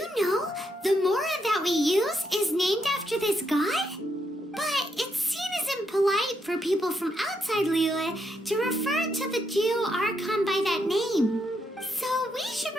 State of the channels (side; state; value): both; normal; correlation 0.79